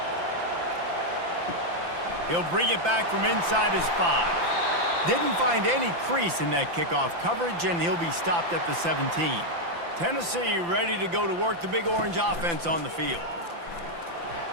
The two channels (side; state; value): left; late; 5.9 ms